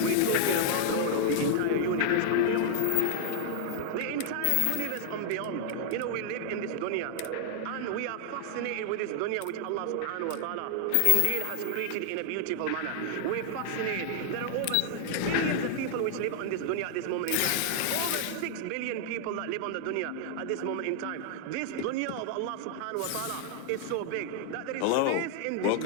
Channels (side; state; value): both; different; correlation -0.01